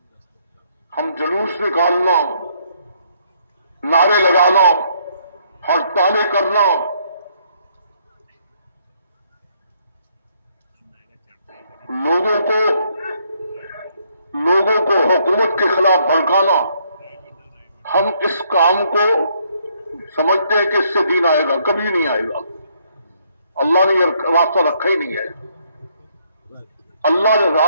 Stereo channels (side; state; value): both; inverted; correlation -0.69